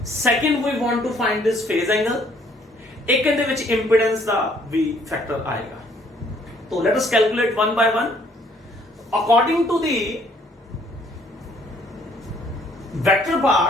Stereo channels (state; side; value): normal; both; correlation 0.63